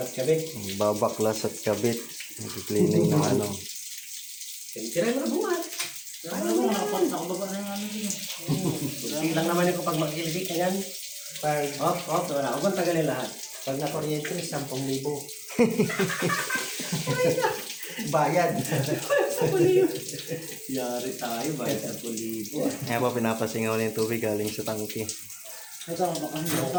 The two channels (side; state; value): both; identical; correlation 1.00